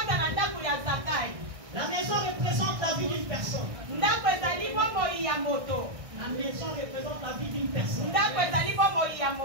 La maison représente la vie d'une personne. La maison représente la vie d'une personne.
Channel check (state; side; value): late; left; 1.6 ms